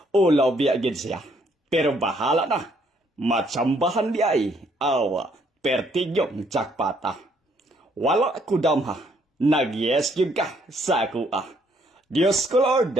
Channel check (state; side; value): normal; both; correlation 0.68